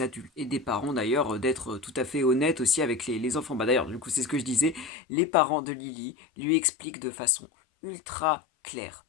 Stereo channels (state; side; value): drops out; right; at 4.9 s